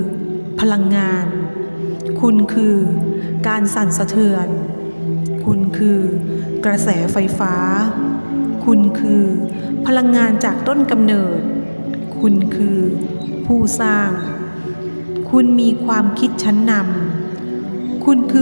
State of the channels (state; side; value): inverted; both; correlation -1.00